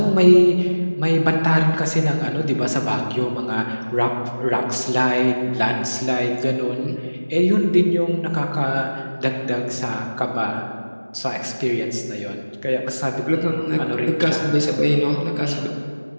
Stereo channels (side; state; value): both; inverted; correlation -1.00